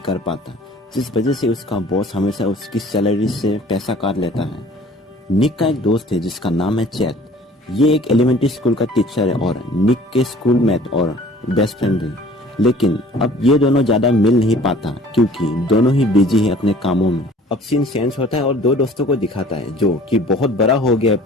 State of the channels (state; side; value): normal; both; correlation 0.50